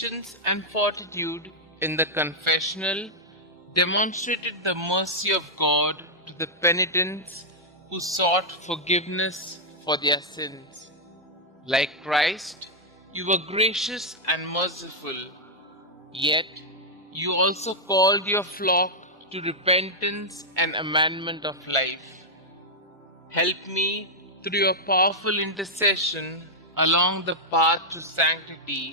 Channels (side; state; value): both; normal; correlation -0.05